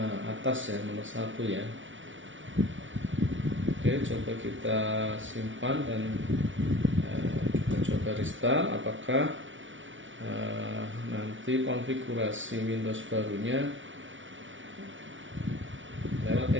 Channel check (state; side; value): late; left; 0.56 ms